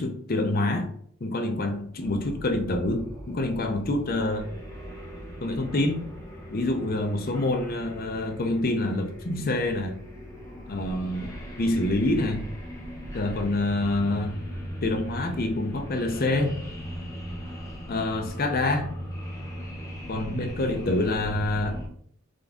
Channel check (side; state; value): both; normal; correlation 0.54